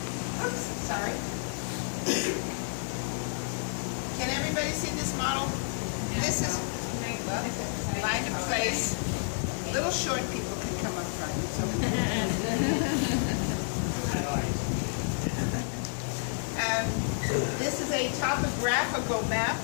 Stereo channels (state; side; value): silent; right; digital silence